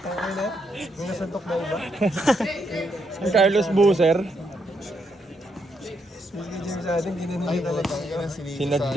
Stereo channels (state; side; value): normal; both; correlation 0.78